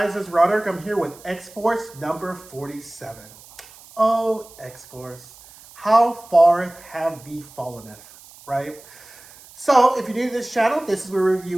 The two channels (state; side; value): noise; right; hiss, 22 dB below the sound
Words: it's Roderick. I'm here with X-Force number 47. Oh, X-Force, how far have thee fallenneth, right? So, if you're new to this channel, this is where we